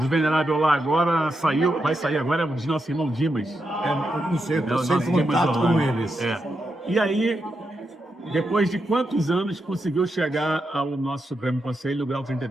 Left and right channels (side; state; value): both; normal; correlation 0.85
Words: O venerável lá agora saiu, vai sair agora, é o de nosso irmão Dimas. Eu não sei, eu É, o estou nosso sem Dimas contato Orlando. com eles. É. E aí, depois de quantos anos conseguiu chegar ao nosso Supremo Conselho, grau